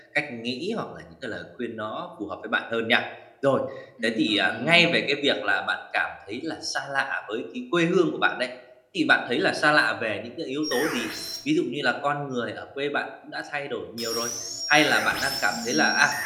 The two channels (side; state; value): both; identical; correlation 1.00